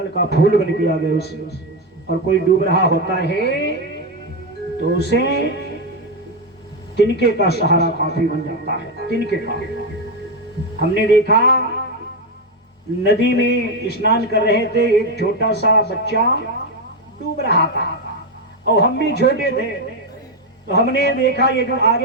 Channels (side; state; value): both; normal; correlation 0.08